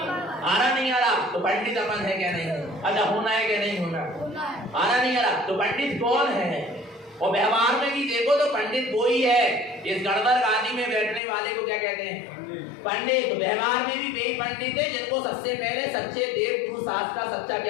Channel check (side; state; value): right; drops out; at 11.2 s